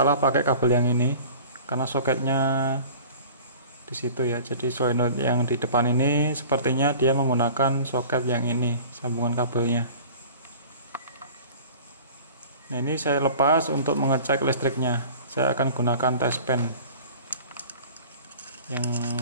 pakai kabel yang ini karena soketnya di situ ya. Jadi solenoid yang di depan ini sepertinya dia menggunakan soket yang ini, sambungan kabelnya. Nah, ini saya lepas untuk mengecek listriknya. Saya akan gunakan test pen yang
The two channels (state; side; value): inverted; both; correlation -0.43